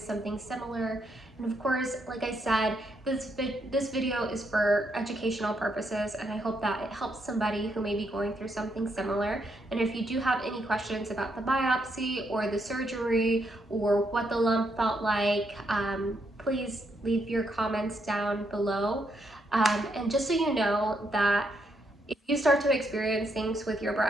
something similar. And of course, like I said, this video is for educational purposes, and I hope that it helps somebody who may be going through something similar. And if you do have any questions about the biopsy or the surgery or what the lump felt like, please leave your comments down below. And just so you know that if you start to experience things with your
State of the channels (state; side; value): normal; both; correlation 0.77